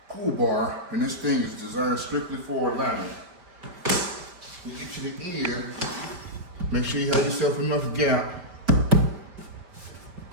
pull bar, and this thing is designed strictly for alignment. You get to the end, make sure you have yourself enough gap.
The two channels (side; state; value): left; late; 5.1 ms